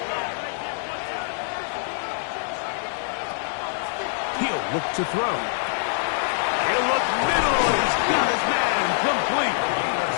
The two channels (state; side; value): silent; right; digital silence